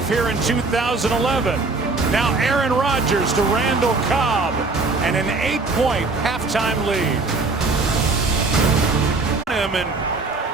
here in 2011. Now Aaron Rodgers to Randall Cobb, and an 8-point halftime lead. And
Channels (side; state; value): left; quieter; 3.7 dB